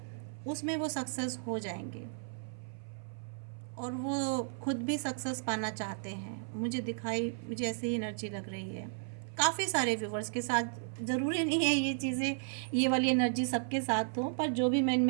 उसमें वो सक्सेस हो जाएंगे, और वो खुद भी सक्सेस पाना चाहते हैं। मुझे ऐसी ही एनर्जी लग रही है काफ़ी सारे व्यूवर्स के साथ। ज़रूरी नहीं है ये चीज़ें, ये वाली एनर्जी सबके साथ हो, पर जो भी मैं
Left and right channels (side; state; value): left; silent; 55 dB below the other